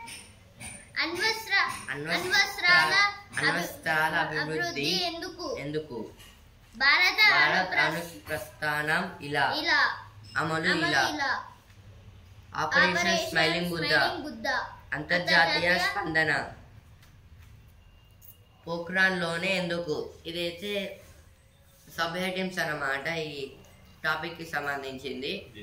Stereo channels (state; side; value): identical; both; correlation 1.00